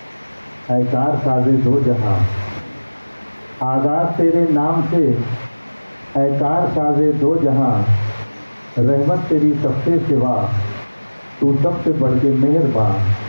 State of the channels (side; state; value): both; inverted; correlation -1.00